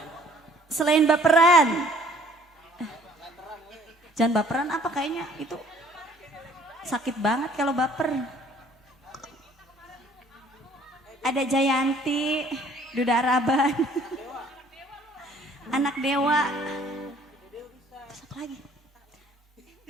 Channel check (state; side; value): normal; both; correlation 0.57